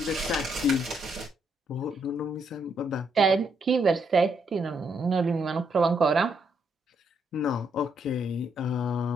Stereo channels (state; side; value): normal; both; correlation 0.75